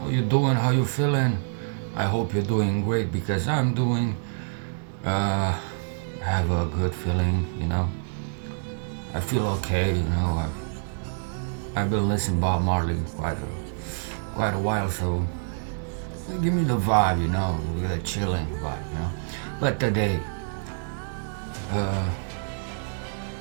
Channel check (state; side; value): silent; left; digital silence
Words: you doing? How you feeling? I hope you're doing great because I'm doing. Uh, I have a good feeling. I feel okay. I've been listening Bob Marley quite a while, so give me the vibe. With a chilling vibe. But today, uh,